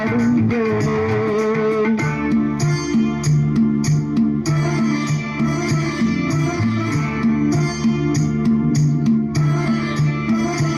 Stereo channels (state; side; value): noise; right; rumble, 29 dB below the sound